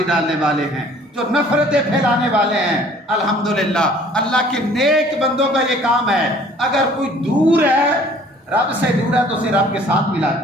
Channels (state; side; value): normal; both; correlation 0.54